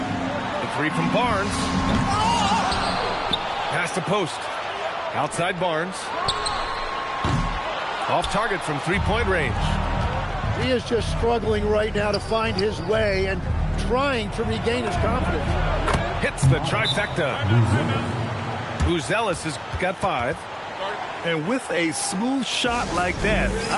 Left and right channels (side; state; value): both; identical; correlation 1.00